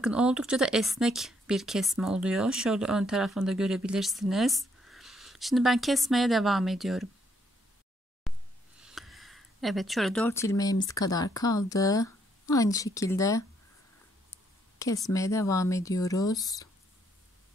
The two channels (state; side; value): normal; both; correlation 0.71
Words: oldukça da esnek bir kesme oluyor. Şöyle ön tarafını da görebilirsiniz. Şimdi ben kesmeye devam ediyorum. Evet, şöyle 4 ilmeğimiz kadar kaldı. Aynı şekilde kesmeye devam ediyoruz.